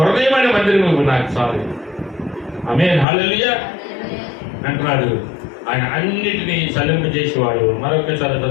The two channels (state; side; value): drops out; right; at 3.1 s